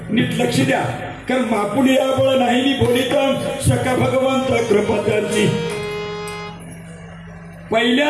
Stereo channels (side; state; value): both; identical; correlation 1.00